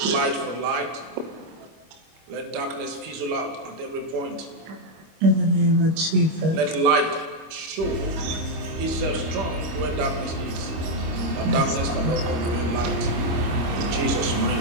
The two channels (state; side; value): late; left; 25 ms